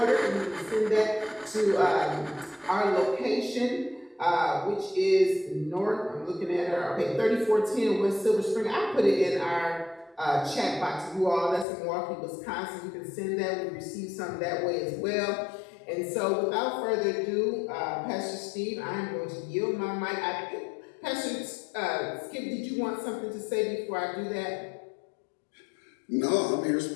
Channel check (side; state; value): right; drops out; at 11.7 s